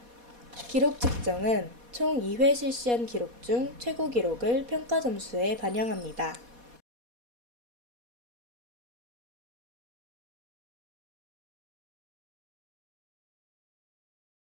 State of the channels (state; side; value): late; left; 4.1 ms